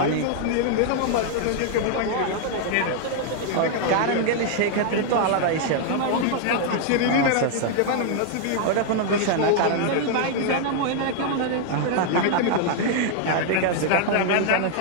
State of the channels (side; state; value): both; different; correlation 0.00